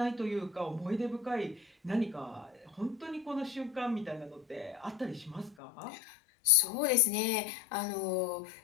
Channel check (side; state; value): right; drops out; at 5.6 s